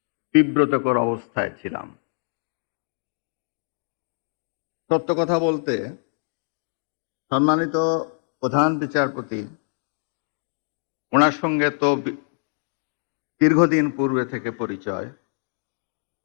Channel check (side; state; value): right; silent; digital silence